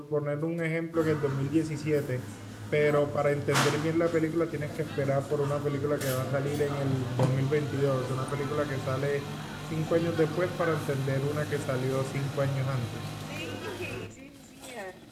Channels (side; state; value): both; identical; correlation 1.00